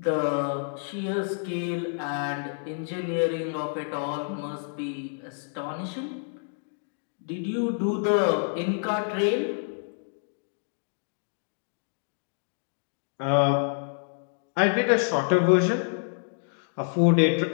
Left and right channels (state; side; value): silent; right; 59 dB below the other